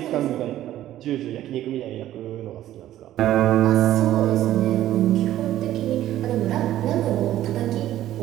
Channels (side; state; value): left; quieter; 13.2 dB